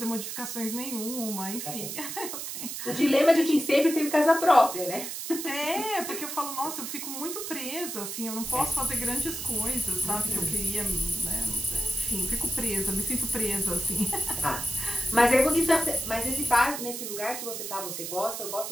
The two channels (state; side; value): noise; right; hiss, 6 dB below the sound